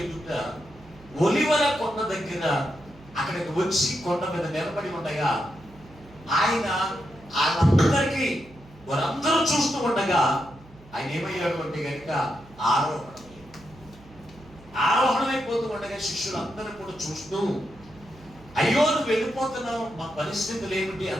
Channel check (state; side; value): noise; right; hum, 23 dB below the sound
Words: ఎదుట ఒలివల కొండ దగ్గర అక్కడికి వచ్చి కొండ మీద నిలబడి ఉండగా ఆయన వాళ్ళందరికీ వారందరూ చూస్తూ ఉండగా ఆయన ఏమయ్యాడు అంటే కనుక ఆరోహణమైపోతూ ఉండగా శిష్యులందరూ కూడా చూస్తూ, అయ్యో నువ్వు వెళ్ళిపోతున్నావు, మా పరిస్థితులు ఏమిటి